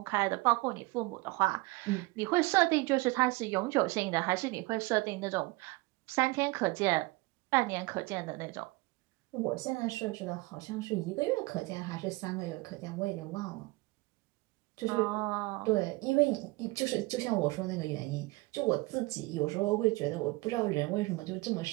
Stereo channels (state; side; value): quieter; left; 22.9 dB